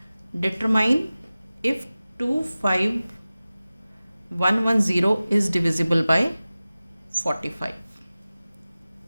Determine if 25110 is divisible bye 45।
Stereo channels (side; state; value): both; inverted; correlation -0.97